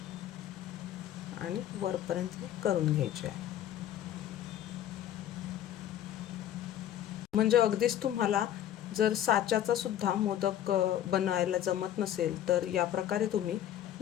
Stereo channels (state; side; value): quieter; right; 11.2 dB